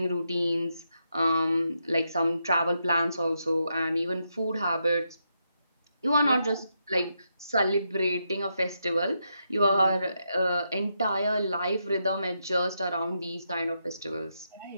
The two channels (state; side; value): inverted; both; correlation -0.82